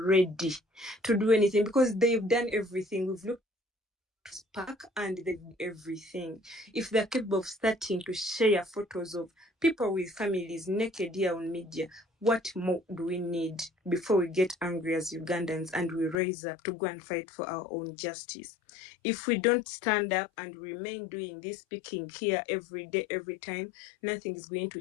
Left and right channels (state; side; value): drops out; right; at 16.2 s